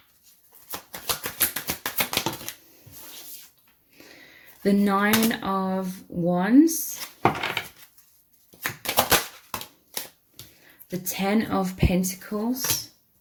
the 9 of Wands, the 10 of Pentacles,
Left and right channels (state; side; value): identical; both; correlation 1.00